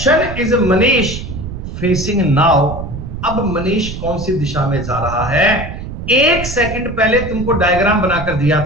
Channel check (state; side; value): noise; right; rumble, 8 dB below the sound